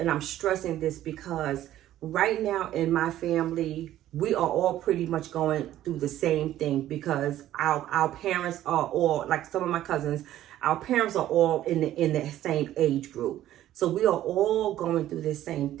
I'm stressing this because right now in my family, we are all pretty much going through the same thing because our parents are all, like some of my cousins, our parents are all in the same age group. So we are all going through this same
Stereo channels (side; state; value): left; quieter; 13.1 dB